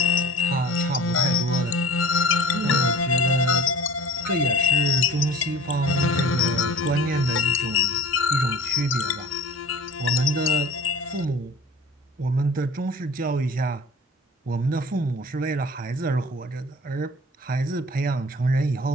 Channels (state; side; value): normal; both; correlation 0.43